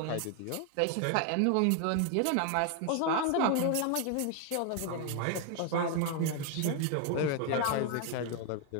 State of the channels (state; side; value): different; both; correlation 0.00